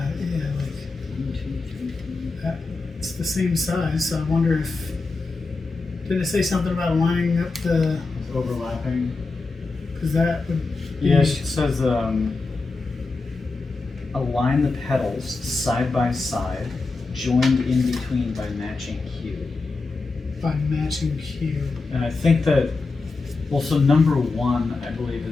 like, 1, 2, 3. it's the same size, so I wonder if, did it say something about lining up the, it's overlapping. because that would. Yeah, she says align the pedals side by side, joined in between by matching hue. By matching hue. And I think that, well, so number 1, I believe,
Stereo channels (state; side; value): quieter; right; 3.8 dB